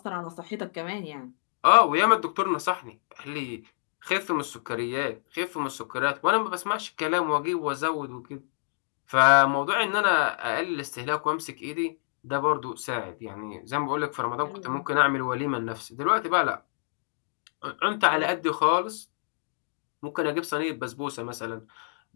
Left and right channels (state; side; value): silent; right; digital silence